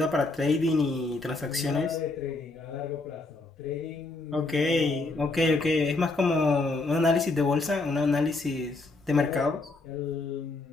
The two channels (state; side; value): quieter; right; 3.3 dB